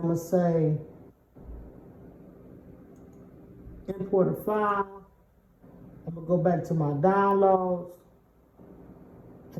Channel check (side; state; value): both; identical; correlation 1.00